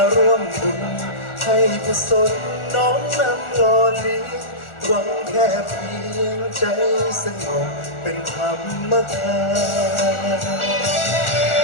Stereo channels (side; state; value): right; late; 1.4 ms